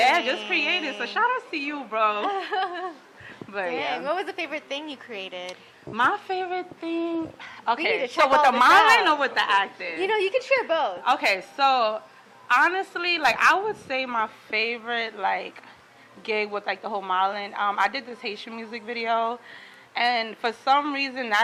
just creating. So shout out to you, bro. But yeah. What was the favorite thing you created? My favorite thing, okay, so with the modeling or with the acting? You can share both. Okay, so honestly, like I would say my favorite like gig with like the whole modeling, I did this Haitian music video, and for some reason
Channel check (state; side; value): identical; both; correlation 1.00